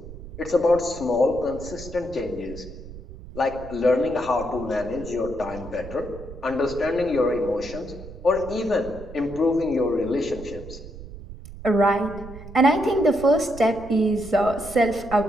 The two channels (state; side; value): noise; right; rumble, 14 dB below the sound